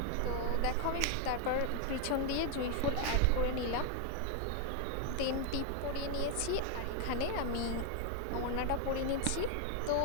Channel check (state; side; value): different; both; correlation 0.01